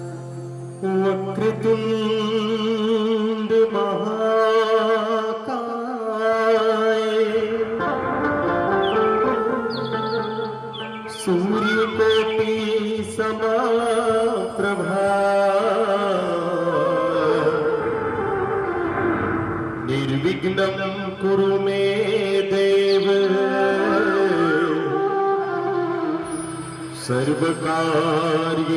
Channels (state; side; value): identical; both; correlation 1.00